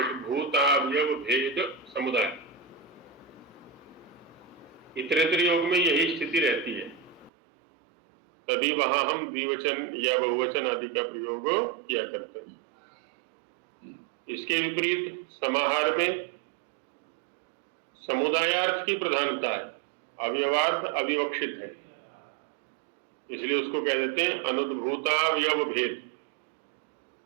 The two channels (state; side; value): drops out; left; at 7.3 s